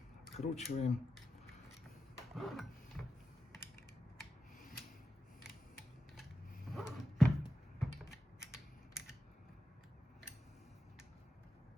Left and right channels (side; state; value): both; normal; correlation 0.90